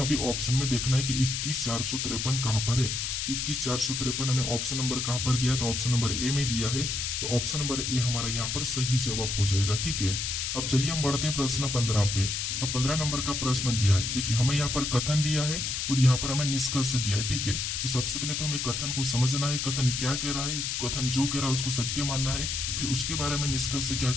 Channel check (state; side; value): noise; left; hiss, 2 dB below the sound